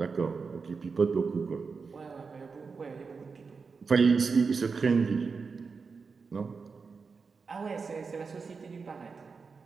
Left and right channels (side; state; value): left; quieter; 5.0 dB